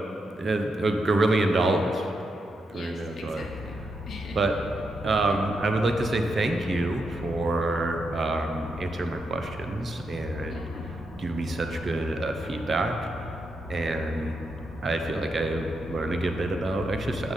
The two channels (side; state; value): both; normal; correlation 0.83